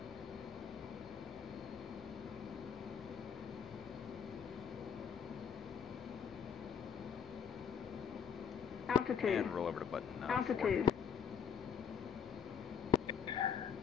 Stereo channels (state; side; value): quieter; right; 7.3 dB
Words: Altitude. And roll over to button Altitude. 4.